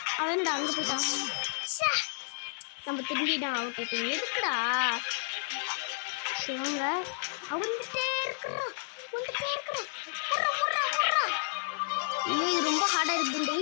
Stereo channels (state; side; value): silent; right; digital silence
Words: அவன் என்னடா அங்கே போயிட்டான். நம்ம திரும்பிட்டான் அவுட் ஆயிட்டோம். எதுக்குடா வாங்க. வந்துட்டே இருக்கிறான். ஓடுறா. ஐயோ இது ரொம்ப ஹார்டாக இருக்குது. இந்த